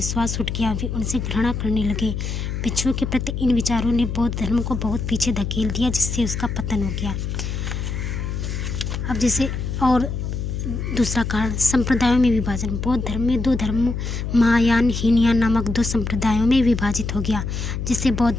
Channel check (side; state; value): left; noise; hum, 4 dB below the sound